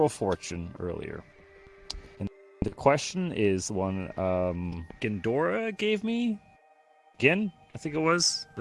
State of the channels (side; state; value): both; identical; correlation 1.00